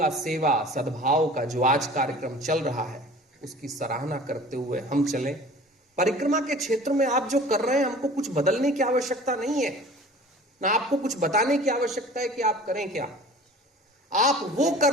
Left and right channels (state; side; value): normal; both; correlation 0.44